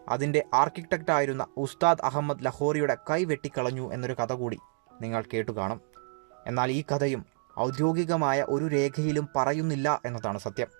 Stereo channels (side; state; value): left; silent; 55 dB below the other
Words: അതിൻ്റെ ആർക്കിടെക്റ്റായിരുന്ന ഉസ്താദ് അഹമ്മദ് ലഹോറിയുടെ കൈ വെട്ടിക്കളഞ്ഞു എന്നൊരു കഥ കൂടി നിങ്ങൾ കേട്ടുകാണും. എന്നാൽ ഈ കഥയും ഔദ്യോഗികമായ ഒരു രേഖയിലും പറയുന്നില്ല എന്നതാണ് സത്യം.